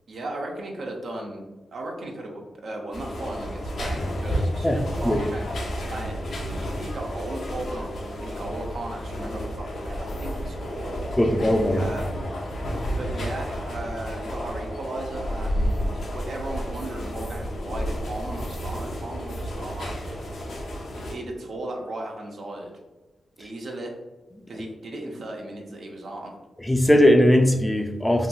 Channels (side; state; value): both; normal; correlation 0.91